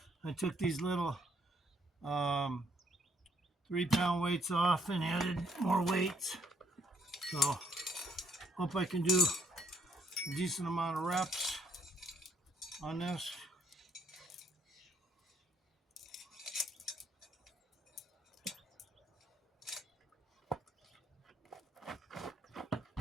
I took these little 3-pound weights off and added more weights. So hope I can do a decent amount of reps on this.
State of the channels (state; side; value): normal; both; correlation 0.69